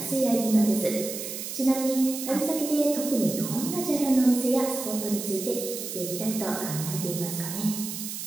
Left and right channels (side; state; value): right; noise; hiss, 7 dB below the sound